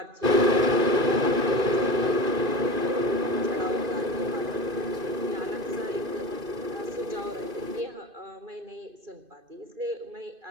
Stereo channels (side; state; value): left; late; 2.5 ms